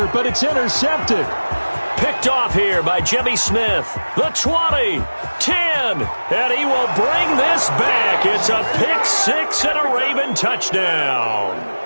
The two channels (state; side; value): inverted; both; correlation -1.00